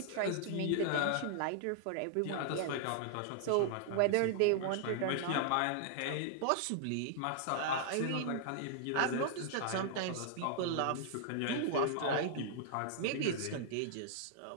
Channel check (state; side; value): different; both; correlation -0.01